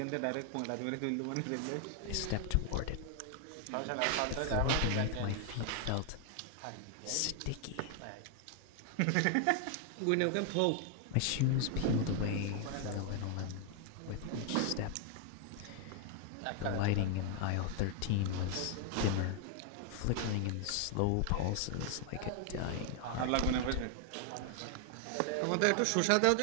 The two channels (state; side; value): different; both; correlation 0.00